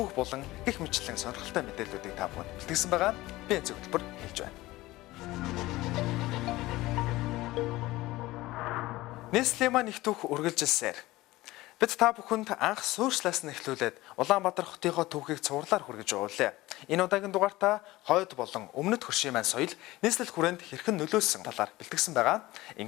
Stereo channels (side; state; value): right; quieter; 18.5 dB